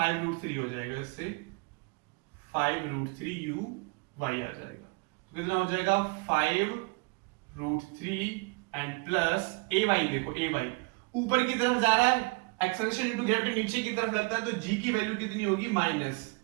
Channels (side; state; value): left; quieter; 28.8 dB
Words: हो जाएगा, इससे 5√3 uy आ जाएगा। तो कितना हो जाएगा, 5√3 एंड प्लस ay। देखो ay ऊपर की तरफ जा रहा है, एक्सेलरेशन इनटू ग्रेविटी नीचे की तरफ लगता है, तो g की वैल्यू कितनी होगी, माइनस,